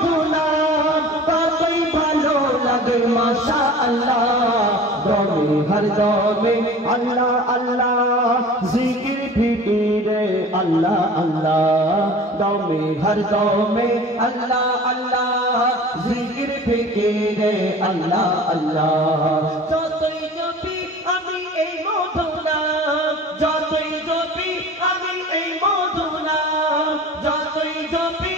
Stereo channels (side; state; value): both; normal; correlation 0.41